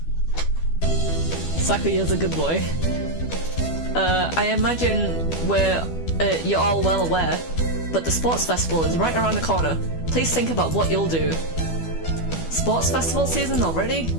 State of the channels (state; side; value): late; right; 12 ms